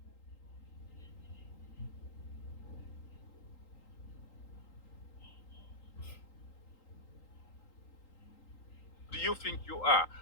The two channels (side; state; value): right; late; 3.8 ms